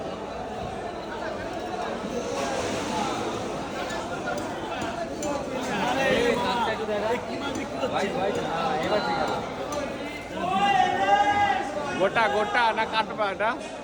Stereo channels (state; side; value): identical; both; correlation 1.00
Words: গোটা গোটা না কাটবা এটা?